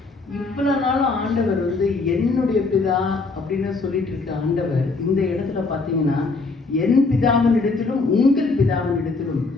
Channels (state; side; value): quieter; right; 3.8 dB